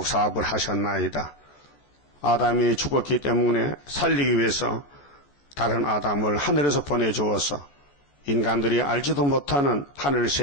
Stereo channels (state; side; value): late; right; 14 ms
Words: 하셨나이다. 아담이 죽었기 때문에 살리기 위해서 다른 아담을 하늘에서 보내주어서 인간들이 알지도 못하는